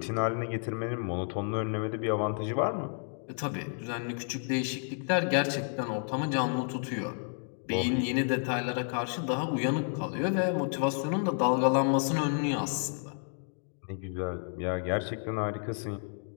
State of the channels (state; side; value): silent; right; 57 dB below the other